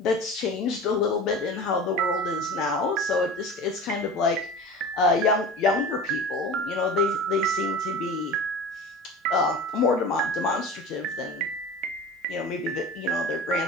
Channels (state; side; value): normal; both; correlation 0.35